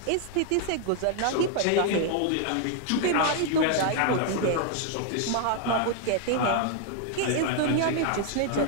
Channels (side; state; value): both; different; correlation 0.00